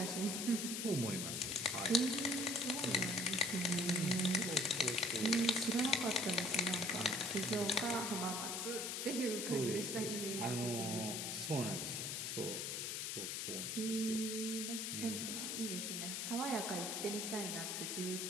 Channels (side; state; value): left; noise; hiss, 2 dB below the sound